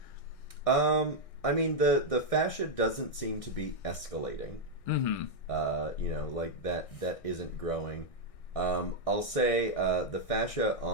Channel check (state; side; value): late; right; 1.6 ms